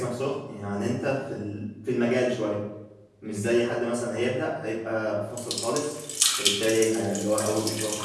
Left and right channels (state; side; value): identical; both; correlation 1.00